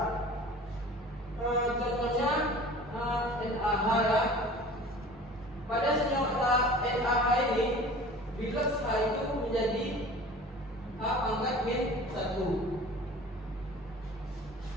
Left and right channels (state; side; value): normal; both; correlation 0.42